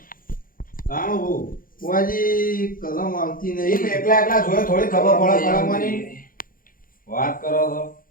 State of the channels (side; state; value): right; late; 0.41 ms